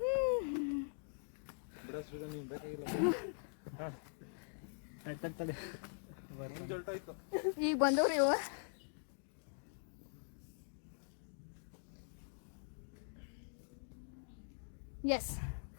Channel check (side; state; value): right; silent; digital silence